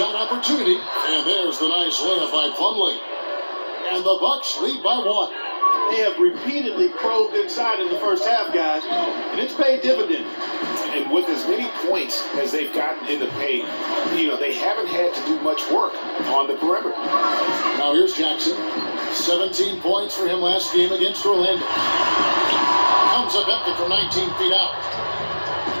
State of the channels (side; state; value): both; inverted; correlation -1.00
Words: opportunity. And there's the nice layup by Plumlee. And the Bucks lead by 1. They have repeatedly probed inside in the first half, guys, and it's paid dividends. And with as many points as they've gotten in the paint, they haven't had to do much work on the perimeter. Now here's Jackson. 17 points for him last game against Orlando. Comes up empty from 19 feet out.